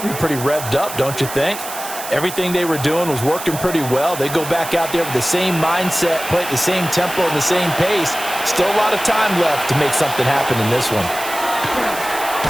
be pretty revved up, don't you think? Everything they were doing was working pretty well. They go back out there with the same mindset, play at the same tempo and the same pace. Still a lot of time left to make something happen in this one.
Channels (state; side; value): noise; right; hiss, 10 dB below the sound